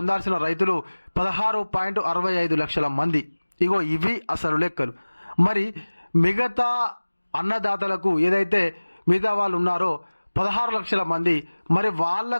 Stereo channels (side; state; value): both; inverted; correlation -1.00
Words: రైతులు 16.65 లక్షల మంది. ఇగో ఇవి అసలు లెక్కలు. మరి మిగతా అన్నదాతలకు ఏదైతే మిగతా వాళ్ళు ఉన్నారో 16 లక్షల మంది, మరి